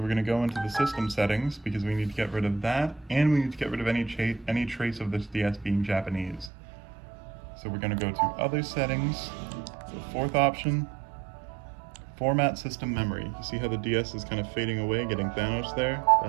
we're going to go into the system settings because we need to get rid of that, and we need to get rid of any trace of this DS being Japanese. So we're going to go to Other Settings, the fourth option, Format System Memory. You see how the DS is kind of fading away, getting Thanos there?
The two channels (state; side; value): drops out; left; at 6.5 s